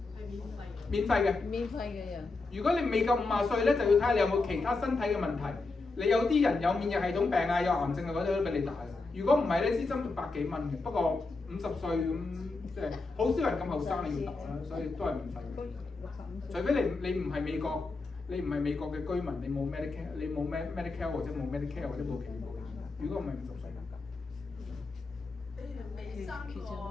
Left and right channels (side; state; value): right; quieter; 3.6 dB